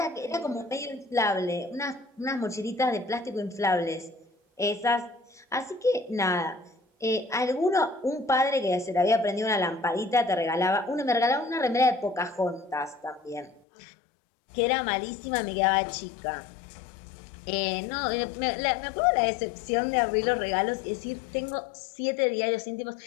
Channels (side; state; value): right; drops out; at 13.6 s